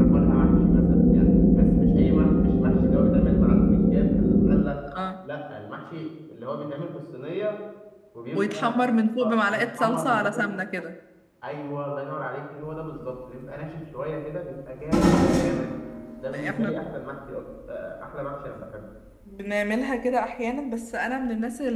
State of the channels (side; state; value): both; identical; correlation 1.00